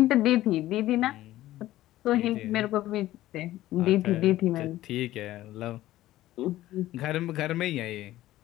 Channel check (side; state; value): right; quieter; 15.2 dB